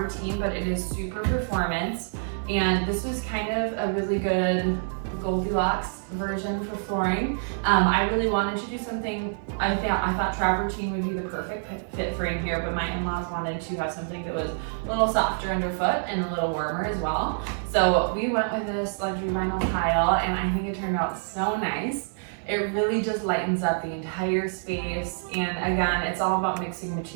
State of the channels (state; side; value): silent; left; digital silence